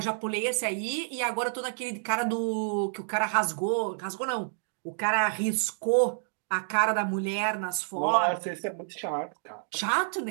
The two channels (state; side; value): silent; left; digital silence